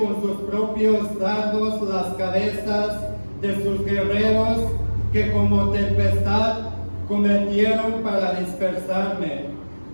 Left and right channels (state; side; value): inverted; both; correlation -1.00